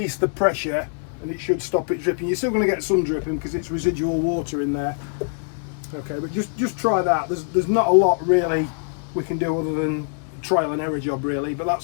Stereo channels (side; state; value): right; silent; digital silence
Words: the pressure and it should stop it dripping. You're still going to get some dripping because it's residual water in there. Okay, but just try that. There's not a lot really we can do other than trial and error job really, but